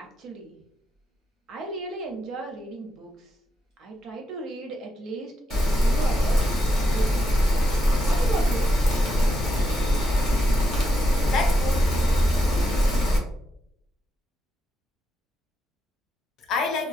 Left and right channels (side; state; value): both; normal; correlation 0.84